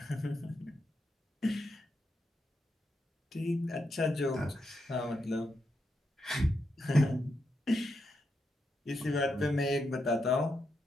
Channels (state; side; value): normal; both; correlation 0.83